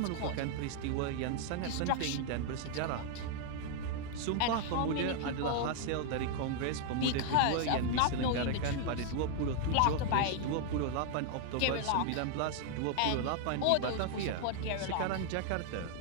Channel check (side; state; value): both; different; correlation 0.00